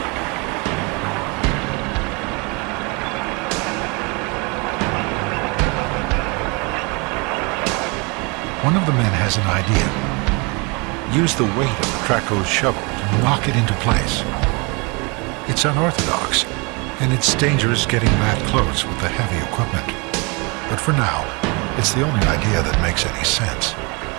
One of the men has an idea. Use the weight of the Traco's shovel to knock it into place. It's unorthodox, and it's dangerous getting that close with the heavy equipment. But for now, it's the only idea that makes any sense.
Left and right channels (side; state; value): left; quieter; 29.7 dB